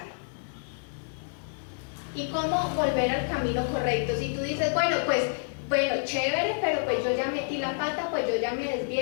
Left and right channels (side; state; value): right; silent; digital silence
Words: ¿Y cómo volver al camino correcto? Si tú dices, bueno, chévere, pero pues yo ya metí la pata, pues yo ya me